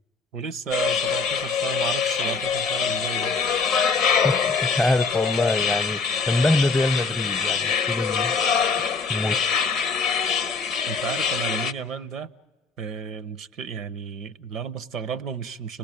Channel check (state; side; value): quieter; right; 4.0 dB